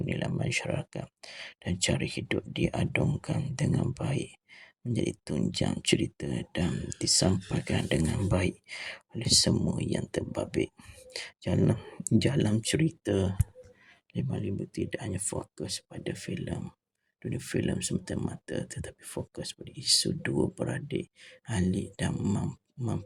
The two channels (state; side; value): identical; both; correlation 1.00